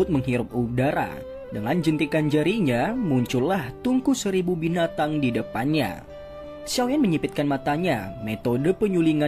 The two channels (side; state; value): both; identical; correlation 1.00